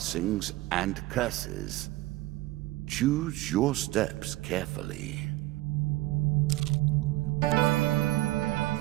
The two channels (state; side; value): quieter; left; 18.1 dB